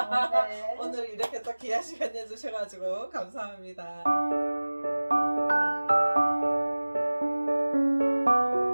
네. 오늘 이렇게 또 귀한 시간 내주셔가지고 감사합니다.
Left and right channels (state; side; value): inverted; both; correlation -1.00